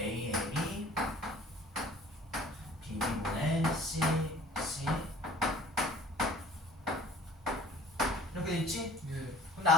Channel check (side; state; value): both; normal; correlation 0.50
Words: A이 B분의 C, C 이렇게 돼 있지? 예. 근데